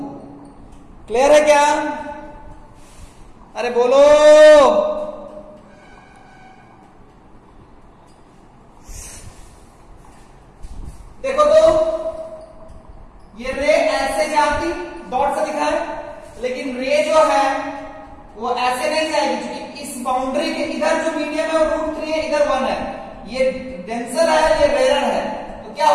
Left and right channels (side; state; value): both; identical; correlation 1.00